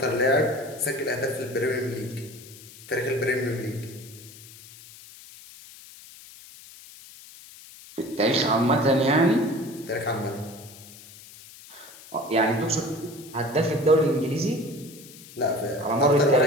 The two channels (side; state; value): left; noise; hiss, 19 dB below the sound